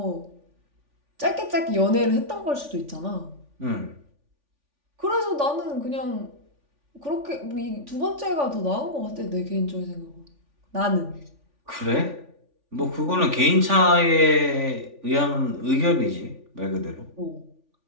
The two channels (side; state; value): left; late; 3.5 ms